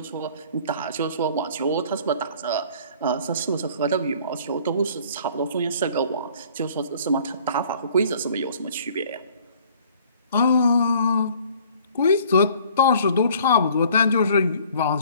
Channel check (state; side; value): inverted; both; correlation -0.54